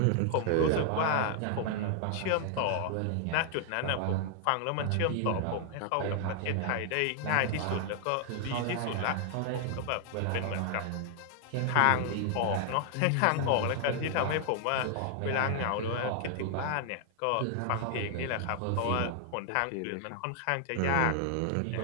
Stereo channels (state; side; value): different; both; correlation 0.00